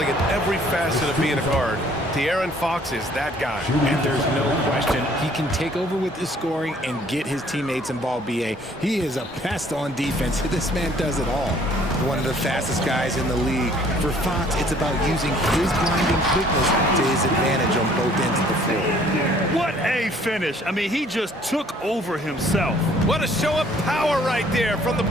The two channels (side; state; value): both; normal; correlation 0.59